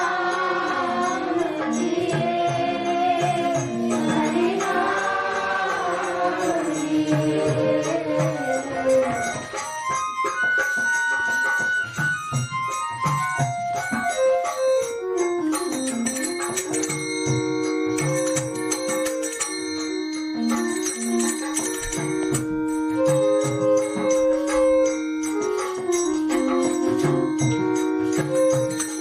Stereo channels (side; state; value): both; identical; correlation 1.00